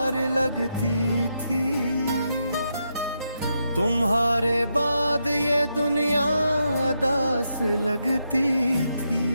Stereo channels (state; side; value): inverted; both; correlation -0.83